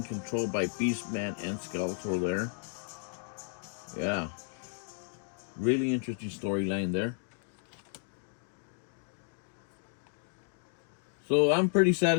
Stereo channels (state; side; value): silent; right; 56 dB below the other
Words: controlled by Beastman and Skeletor there. Yeah, really interesting storyline there. So I'm pretty